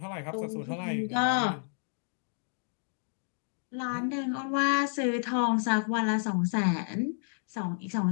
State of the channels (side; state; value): right; silent; digital silence